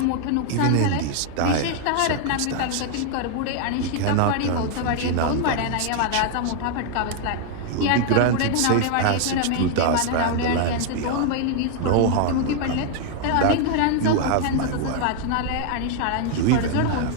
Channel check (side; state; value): both; different; correlation 0.00